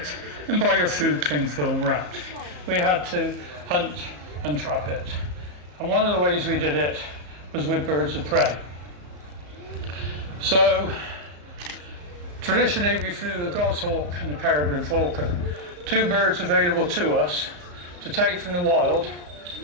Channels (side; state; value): left; late; 34 ms